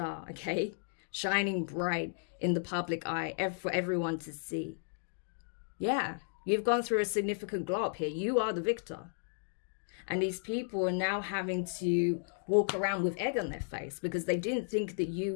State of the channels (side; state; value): right; silent; digital silence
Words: okay? Shining bright in the public eye for everyone to see. Yeah, you've gone through a significant glow up here. You are the victor. And these people are now having to walk around with egg on their face because they didn't think that